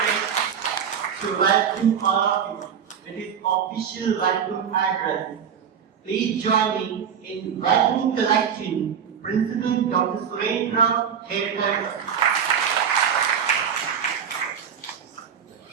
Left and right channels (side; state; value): left; quieter; 7.8 dB